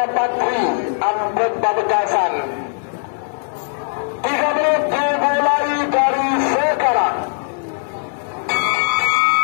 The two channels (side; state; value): right; silent; 65 dB below the other